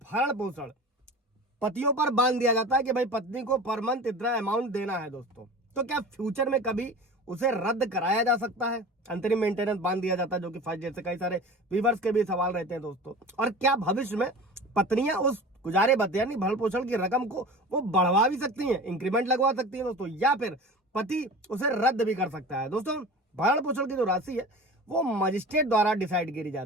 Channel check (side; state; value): both; normal; correlation 0.36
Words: पोषण पतियों पर बांध दिया जाता है कि भाई पत्नी को पर मंथ इतना अमाउंट देना है दोस्तों, तो क्या फ्यूचर में कभी उसे रद्द कराया जा सकता है? अंतरिम मेंटेनेंस बांध दिया जाता है जो कि फर्स्ट, जैसे कई सारे व्यूअर्स के भी सवाल रहते हैं दोस्तों। और क्या भविष्य में पत्नियां उस गुजारे भत्ते यानी भरण पोषण की रकम को वो बढ़वा भी सकती हैं, इंक्रीमेंट लगवा सकती हैं दोस्तों, या फिर पति उसे रद्द भी कर सकता है? दोस्तों भरण पोषण की जो राशि है वो मजिस्ट्रेट द्वारा डिसाइड करी